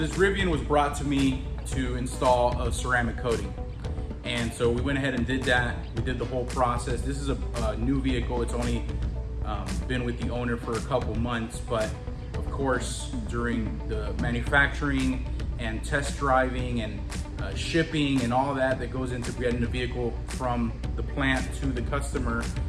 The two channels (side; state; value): both; identical; correlation 1.00